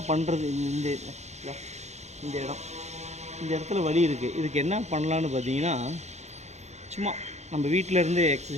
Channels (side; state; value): left; late; 0.33 ms